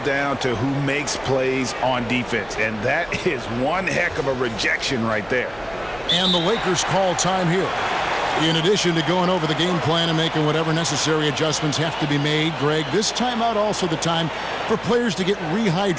down to who makes plays on defense, and that is one heck of a rejection right there. And the Lakers call time here. In addition to going over the game plan and making whatever necessary adjustments have to be made, Greg, this timeout also the time for players to get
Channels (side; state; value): right; noise; hum, 22 dB below the sound